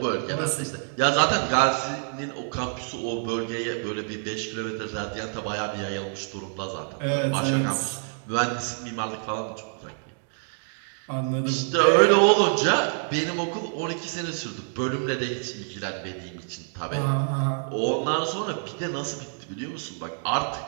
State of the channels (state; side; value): silent; left; 57 dB below the other